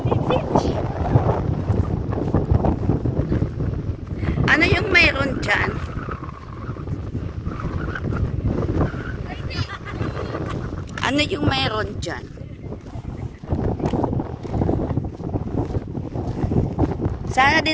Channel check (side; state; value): both; identical; correlation 1.00